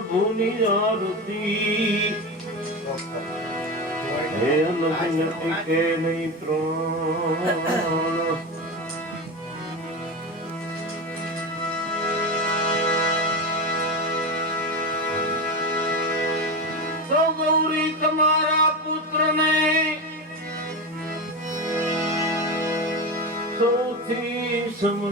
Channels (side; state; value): both; normal; correlation 0.20